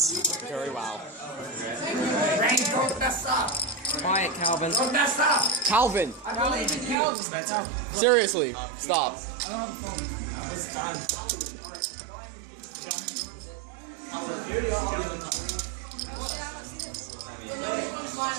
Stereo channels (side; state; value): left; drops out; at 7.0 s